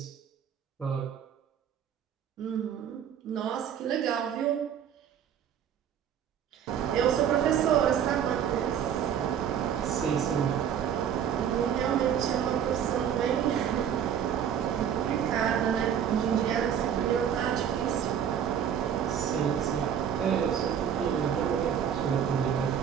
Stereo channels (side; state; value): left; quieter; 8.8 dB